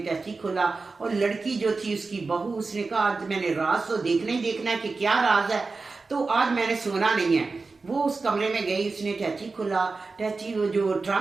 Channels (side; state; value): left; quieter; 4.0 dB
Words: खोला और लड़की जो थी उसकी बहू, उसने कहा आज मैंने राज तो देखना ही देखना है कि क्या राज है, तो आज मैंने सोना नहीं है। वो उस कमरे में गई, उसने टैची खोला, टैची वो जो